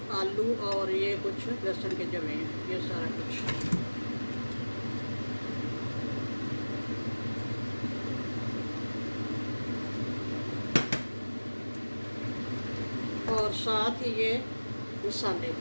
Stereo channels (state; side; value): inverted; both; correlation -1.00